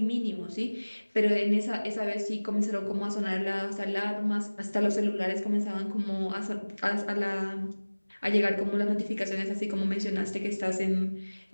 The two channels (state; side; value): inverted; both; correlation -1.00